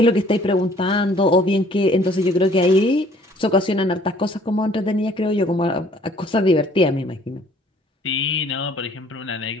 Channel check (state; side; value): normal; both; correlation 0.58